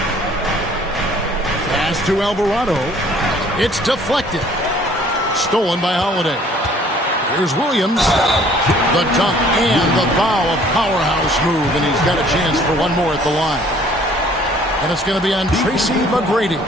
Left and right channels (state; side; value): normal; both; correlation 0.56